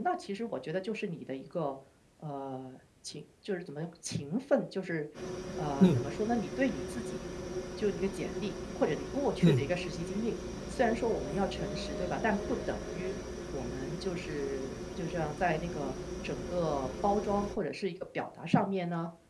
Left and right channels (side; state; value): both; identical; correlation 1.00